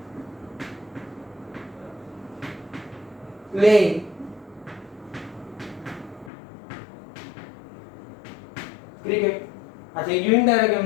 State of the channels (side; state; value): right; drops out; at 6.3 s